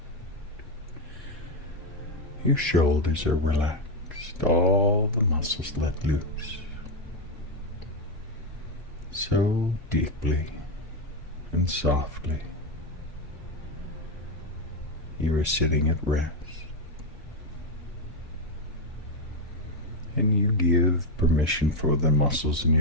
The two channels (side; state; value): both; normal; correlation 0.07